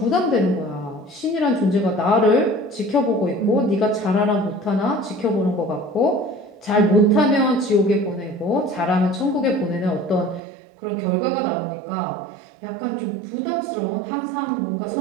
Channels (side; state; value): left; drops out; at 10.4 s